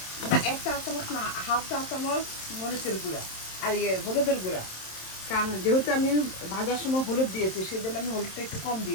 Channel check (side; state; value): right; late; 27 ms